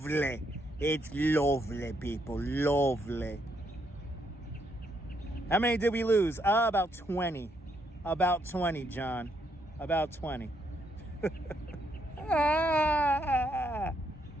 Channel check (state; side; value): normal; both; correlation 0.75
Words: It's lovely, people. Lovely. How many did we lose? About 20. About 20, John. About 20.